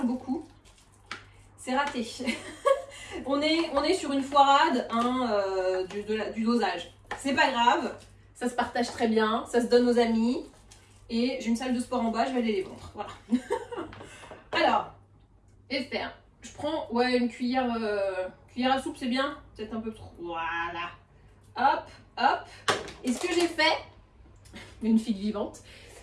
beaucoup. C'est raté. on est sur une foirade hein, du dosage. C'est pas grave. Ça se partage très bien. Ça se donne aux amis. Et j'ai une salle de sport en bas, je vais aller les vendre. Voilà. Alors, et faire. Je prends une cuillère à soupe, c'est bien. Peut-être un peu trop. Voilà. Hop, hop. Et ce que j'ai fait, une fille vivante,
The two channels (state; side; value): identical; both; correlation 1.00